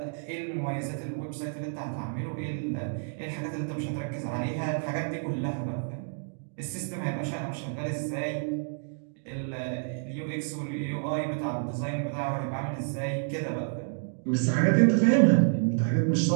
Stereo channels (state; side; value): silent; left; digital silence